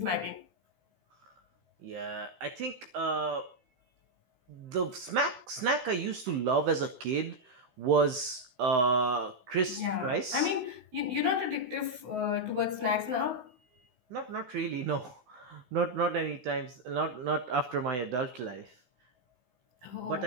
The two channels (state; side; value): late; left; 16 ms